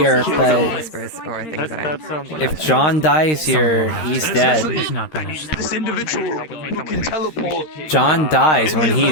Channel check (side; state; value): right; late; 13 ms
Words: but Whispers, or things that I... if John dies here, he's dead. He's not finished. This individual who can teleport. John dies when he